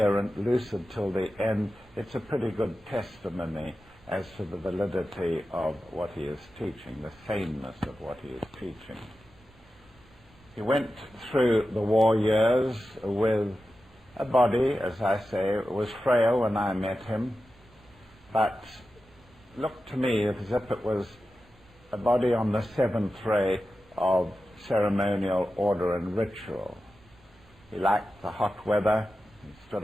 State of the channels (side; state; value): both; normal; correlation 0.92